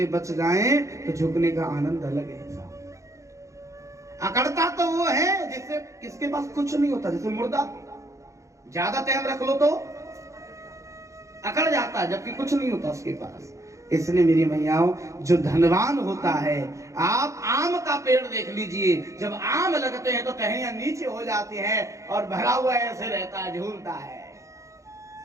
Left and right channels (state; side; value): late; left; 0.15 ms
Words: बच जाएं तो झुकने का आनंद अलग है। अकड़ता तो वो है जिससे किसके पास कुछ नहीं होता, जैसे मुर्दा ज्यादा टाइम रख लो तो अकड़ जाता है, जबकि कुछ नहीं होता उसके पास। इसलिए मेरी मैयाओं, जो धनवान होता है, आप आम का पेड़ देख लीजिए, जब आम लगते हैं तो टहनियां नीचे हो जाती हैं और भरा हुआ ऐसे रहता है, झूलता है।